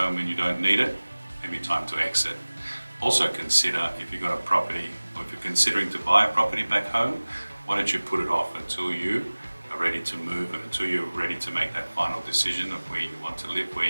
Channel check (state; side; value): inverted; both; correlation -1.00